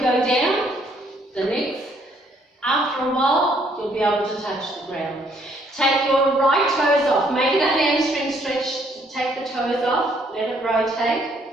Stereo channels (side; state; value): both; normal; correlation 0.67